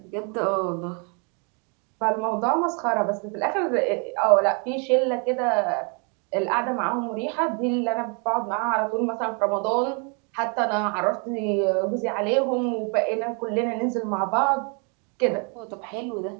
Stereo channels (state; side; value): quieter; left; 36.4 dB